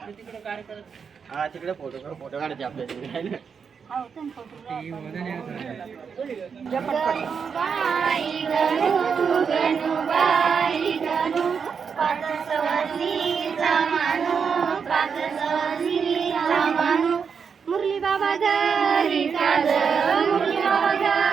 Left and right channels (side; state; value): left; quieter; 6.3 dB